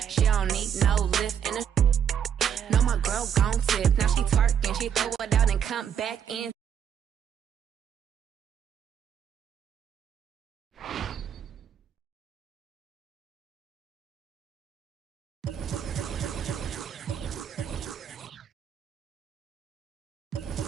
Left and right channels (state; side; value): quieter; left; 8.5 dB